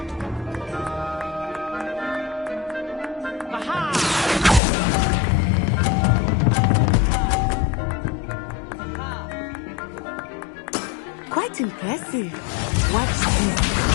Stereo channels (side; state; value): right; drops out; at 4.6 s